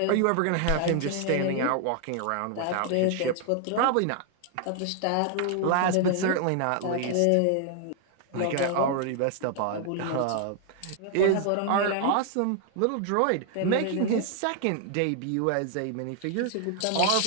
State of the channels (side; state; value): both; different; correlation 0.00